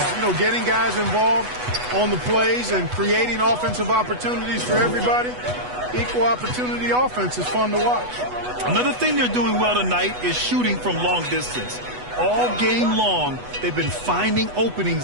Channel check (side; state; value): left; late; 8.1 ms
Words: You know, getting guys involved on the plays and creating offensive opportunities for everybody. Equal opportunity offense is fun to watch. Another thing they're doing well tonight is shooting from long distance. All game long, they've been finding